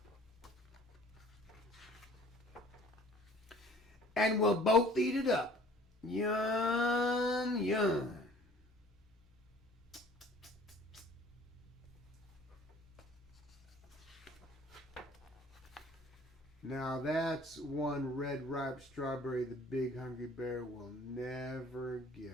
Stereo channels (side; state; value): both; normal; correlation 0.51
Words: And we'll both eat it up. Yum, yum. Now that's one red ripe strawberry the big hungry bear will never